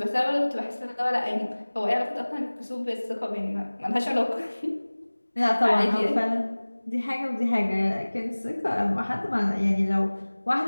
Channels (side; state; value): both; inverted; correlation -1.00